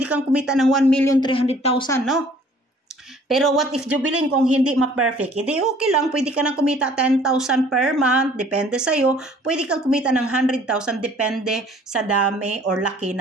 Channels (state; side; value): normal; both; correlation 0.55